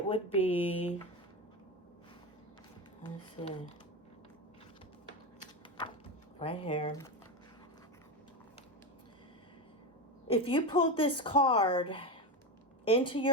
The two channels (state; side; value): normal; both; correlation 0.16